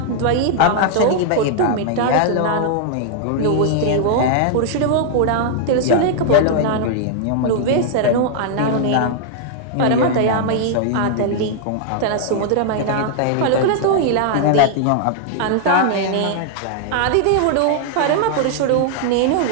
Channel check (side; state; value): both; different; correlation -0.01